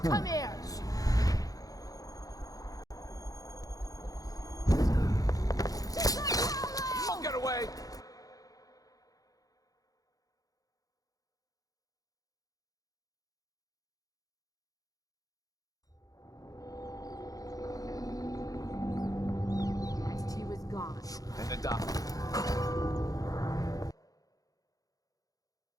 Come here! Don't get away! Next he was gone. And the docks.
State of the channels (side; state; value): right; late; 0.17 ms